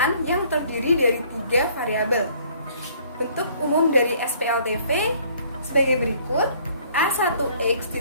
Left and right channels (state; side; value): inverted; both; correlation -0.59